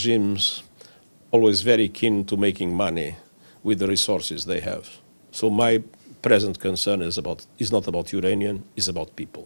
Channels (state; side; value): inverted; both; correlation -1.00